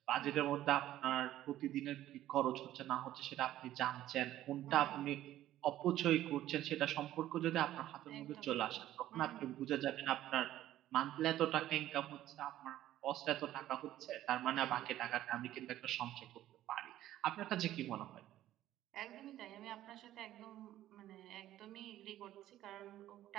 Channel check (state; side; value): quieter; left; 13.5 dB